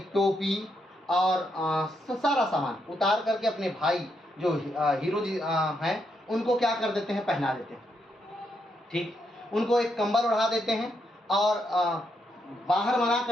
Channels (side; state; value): both; normal; correlation 0.79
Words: टोपी और सारा सामान उतार करके अपने भाई जो हीरो जी हैं, उनको क्या कर देते हैं, पहना देते हैं, ठीक। उनको एक कंबल उड़ा देते हैं और बाहर मना